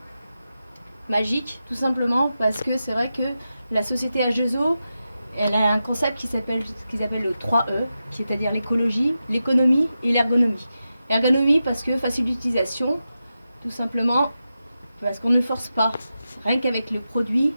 Magique, tout simplement parce que c'est vrai que la société H2O, elle a un concept qui s'appelle le 3E, c'est-à-dire l'écologie, l'économie et l'ergonomie. L'ergonomie parce que facile d'utilisation, tout simplement parce qu'on ne force pas. Rien qu'avec le produit,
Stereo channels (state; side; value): inverted; both; correlation -0.90